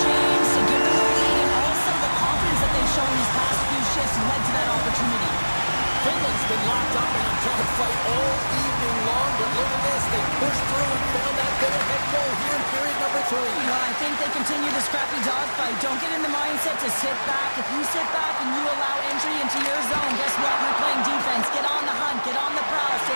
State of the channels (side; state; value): both; inverted; correlation -1.00